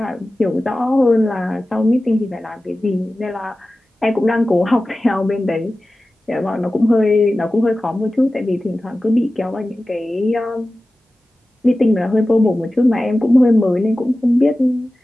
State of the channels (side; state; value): both; normal; correlation 0.95